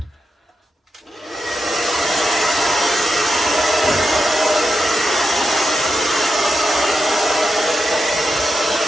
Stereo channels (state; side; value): normal; both; correlation 0.87